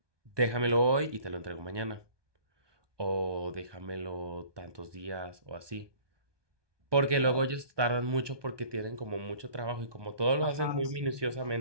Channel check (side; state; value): left; late; 1.2 ms